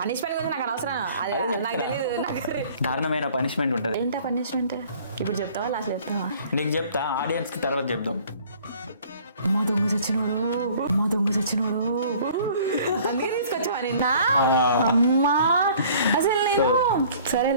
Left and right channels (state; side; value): inverted; both; correlation -0.52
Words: గురించి నాకు అనవసరం. నాకు తెలియదు. దారుణమైన పనిష్మెంట్ ఉంటుంది. ఏంటా పనిష్మెంట్? ఇప్పుడు చెప్తావా లాస్ట్ చెప్తావా? నీకు చెప్తా, ఆడియన్స్ కి తర్వాత చెప్దాం. మా దొంగ చచ్చినోడు అందుకే తీసుకొచ్చావా నిన్న? అమ్మా అసలు నేను